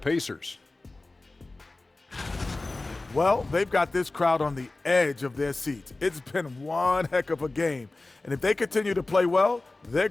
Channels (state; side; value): quieter; right; 3.1 dB